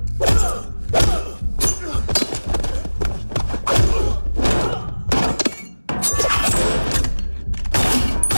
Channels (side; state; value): both; inverted; correlation -1.00